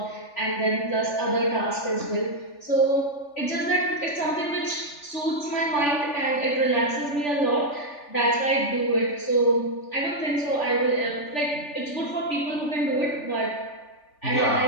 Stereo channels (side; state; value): right; late; 3.4 ms